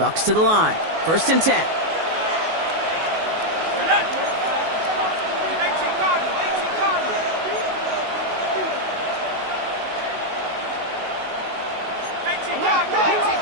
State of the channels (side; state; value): left; late; 19 ms